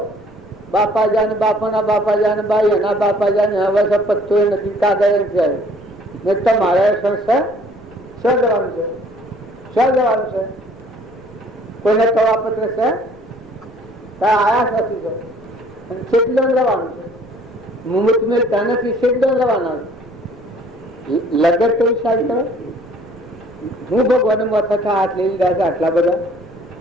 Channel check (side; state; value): right; noise; rumble, 26 dB below the sound